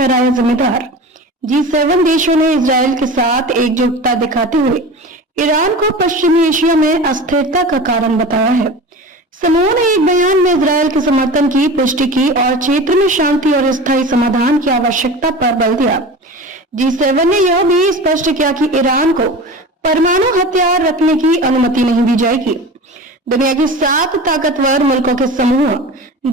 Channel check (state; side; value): normal; both; correlation 0.33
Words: जिम्मेदार। G7 देशों ने इजरायल के साथ एकजुटता दिखाते हुए ईरान को पश्चिमी एशिया में अस्थिरता का कारण बताया है। समूह ने एक बयान में इजरायल के समर्थन की पुष्टि की और क्षेत्र में शांति और स्थायी समाधान की आवश्यकता पर बल दिया। G7 ने यह भी स्पष्ट किया कि ईरान को परमाणु हथियार रखने की अनुमति नहीं दी जाएगी। दुनिया की 7 ताकतवर मुल्कों के समूह